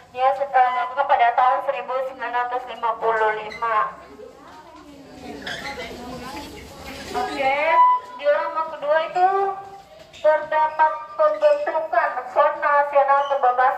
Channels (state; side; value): identical; both; correlation 1.00